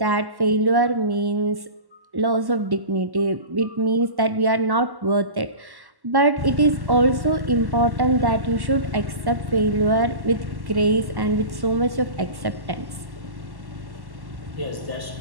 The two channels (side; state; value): left; late; 1.1 ms